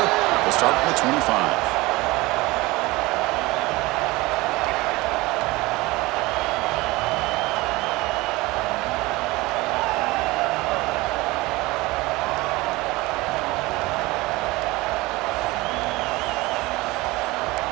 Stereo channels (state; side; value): quieter; left; 21.3 dB